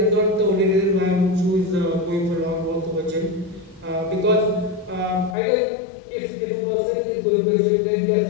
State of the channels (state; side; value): drops out; right; at 5.4 s